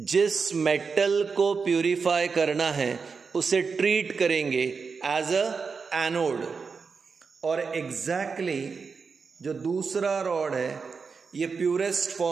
मेटल को प्यूरिफाई करना है उसे ट्रीट करेंगे एज अ एनोड। और एग्जैक्टली जो दूसरा रॉड है ये प्योरेस्ट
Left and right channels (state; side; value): quieter; left; 5.2 dB